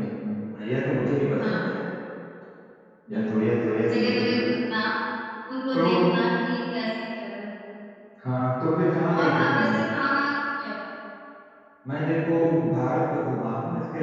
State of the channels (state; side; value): identical; both; correlation 1.00